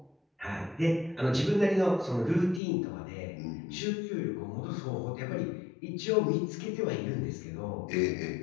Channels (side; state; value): right; drops out; at 2.6 s